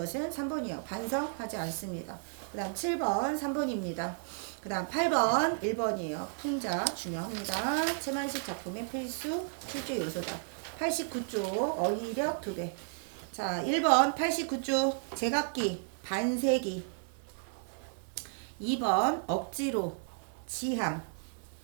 3번이요. 반성하지 않습니다. 그 다음 7번 3번입니다. 그 다음 8번 1번이에요. 풍자 중요합니다. 최만식 작품의 필수 출제 요소다. 89쪽 어휘력 2배. 자, 1번 89쪽 제각기 반세기. 2번 억지로 지향.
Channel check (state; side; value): silent; left; 56 dB below the other